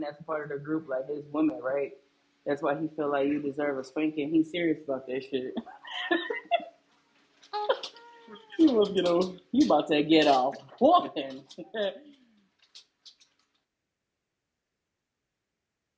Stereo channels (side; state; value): both; identical; correlation 1.00